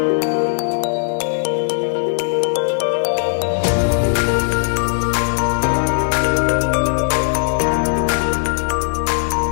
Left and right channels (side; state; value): right; silent; 67 dB below the other